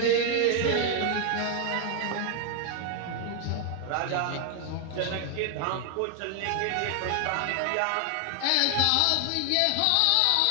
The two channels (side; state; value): both; different; correlation 0.00